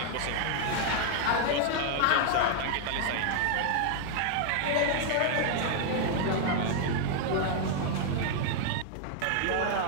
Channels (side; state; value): both; different; correlation 0.00